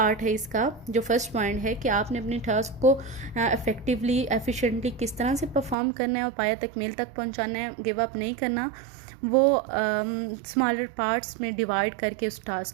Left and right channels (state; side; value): drops out; left; at 5.8 s